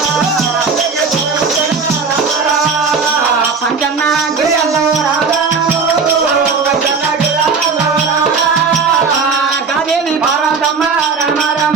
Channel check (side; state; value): left; quieter; 5.0 dB